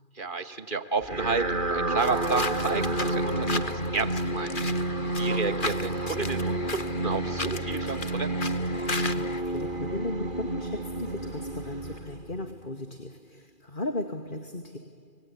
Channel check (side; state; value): right; late; 2.4 ms